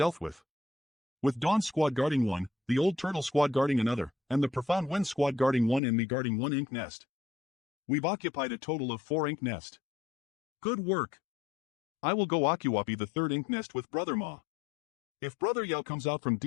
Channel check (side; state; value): right; drops out; at 5.8 s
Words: with Dawn Squad guarding one, the Old Turtle Squad guarding another, and the Profound Wind Squad guarding one and me guarding one ink nest. We've occupied a total of 4 ink nest. Good work. I will go occupy the 3rd ink nest with Brother Ma. If Brother Yao comes out from